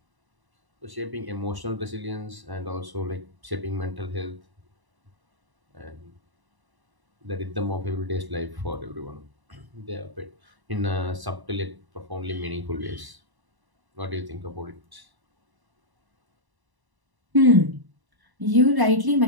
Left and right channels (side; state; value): left; late; 1.0 ms